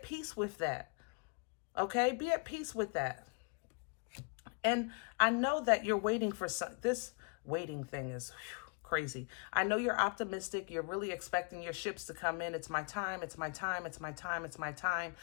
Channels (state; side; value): quieter; right; 36.4 dB